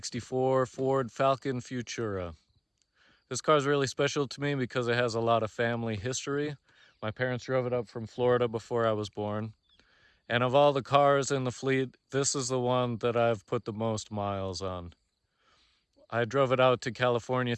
Ford Falcon Futura. This car is really special to me because it has a lot of family history. My parents drove it up from Florida before I was born. And of all the cars in the fleet, this is the one that I've put the most miles on. I drove it out to California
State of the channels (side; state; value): both; identical; correlation 1.00